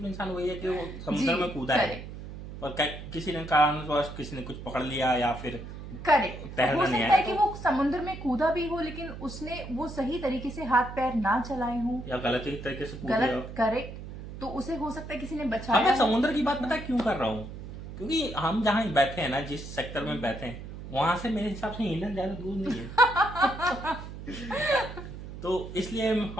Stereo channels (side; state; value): right; noise; hum, 11 dB below the sound